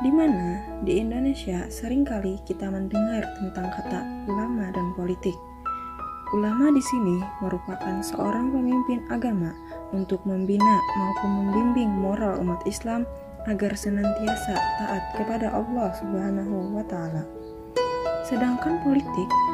di mana di Indonesia seringkali kita mendengar tentang kata ulama dan politik. Ulama di sini merupakan seorang pemimpin agama untuk membina maupun membimbing moral umat Islam agar senantiasa taat kepada Allah Subhanahu wa Ta'ala. Sedangkan politik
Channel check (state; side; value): identical; both; correlation 1.00